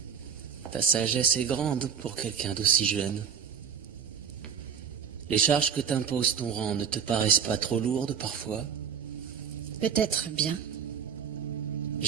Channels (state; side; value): quieter; left; 7.2 dB